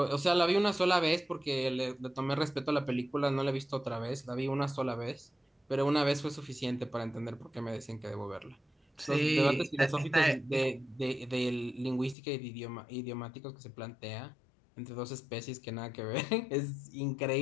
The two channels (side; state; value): right; drops out; at 12.2 s